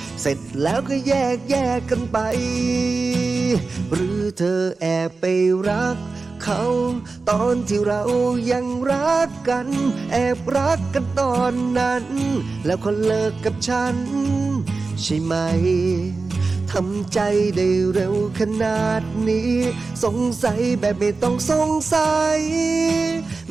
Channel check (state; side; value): quieter; left; 4.0 dB